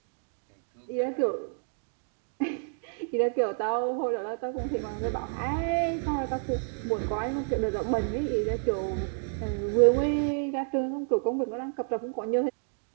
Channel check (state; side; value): silent; left; digital silence